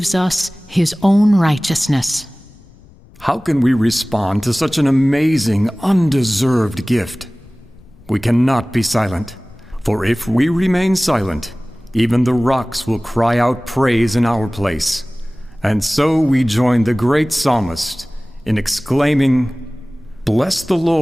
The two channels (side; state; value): left; noise; rumble, 25 dB below the sound